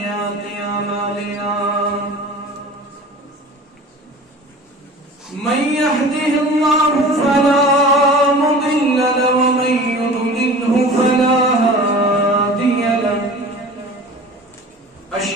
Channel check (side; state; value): both; normal; correlation 0.39